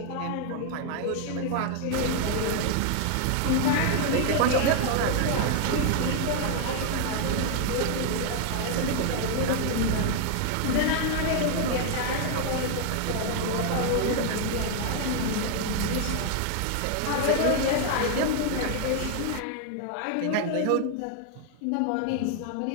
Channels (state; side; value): different; both; correlation 0.00